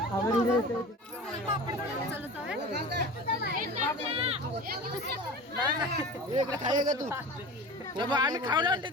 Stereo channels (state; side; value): normal; both; correlation 0.35